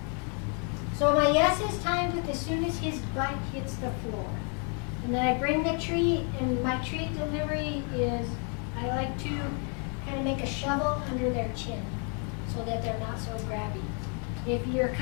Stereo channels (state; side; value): quieter; right; 39.4 dB